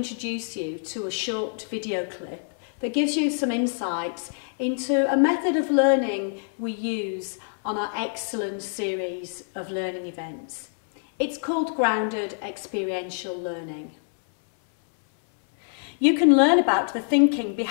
you to a short video clip that gives you some insights into a method of learning we use on our excellent series of learning events. It's called Grounded Experiential Learning. You can learn about the thinking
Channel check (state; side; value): silent; right; 59 dB below the other